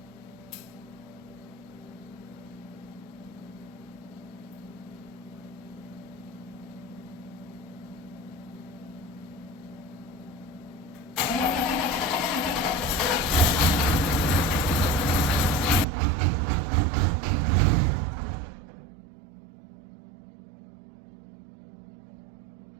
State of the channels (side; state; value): left; drops out; at 15.9 s